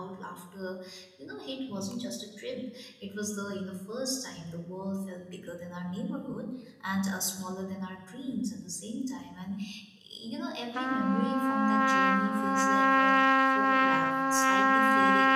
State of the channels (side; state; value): both; identical; correlation 1.00